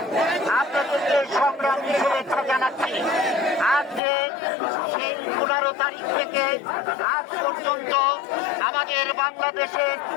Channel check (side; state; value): right; drops out; at 4.0 s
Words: আপনাদেরকে সংগ্রামী শুভেচ্ছা জানাচ্ছি। আজকে সেই 15 তারিখ থেকে আজ পর্যন্ত আমাদের বাংলাদেশে